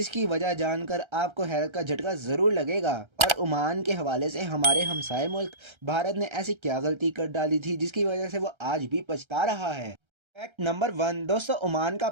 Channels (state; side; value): late; left; 1.3 ms